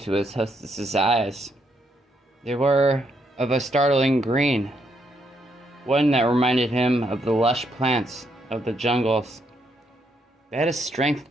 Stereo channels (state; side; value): normal; both; correlation 0.76